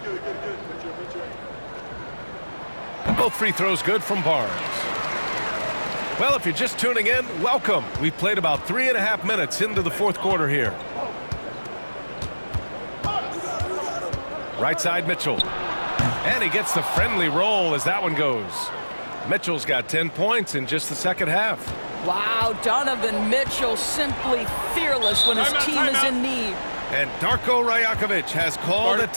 And both free throws good from Barnes. Well, if you're just tuning in, welcome. We've played about 3.5 minutes into the fourth quarter here. Right side, Mitchell. And he gets the friendly roll as that one goes. Mitchell's got 10 points in just the second half. Wow, Donovan Mitchell simply fearless when his team is in need. And Darko Rajakovic has called a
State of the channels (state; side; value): inverted; both; correlation -1.00